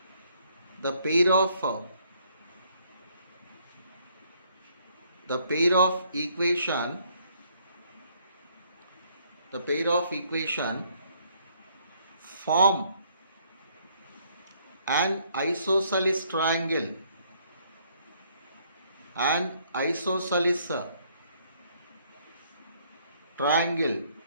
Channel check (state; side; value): inverted; both; correlation -0.66